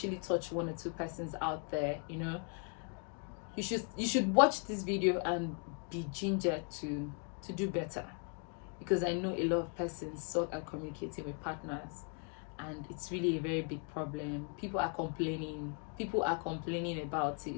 touch 1 or 2 persons out there. You know, you should watch this video and be gingered to do better, because I know a lot of persons suck at communicating with partners, and it's really a very big problem. People are complaining about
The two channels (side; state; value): right; quieter; 38.3 dB